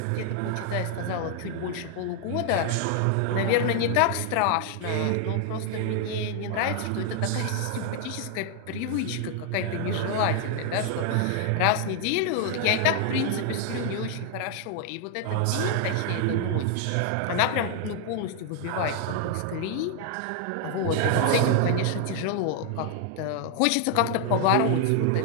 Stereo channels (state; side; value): different; both; correlation 0.00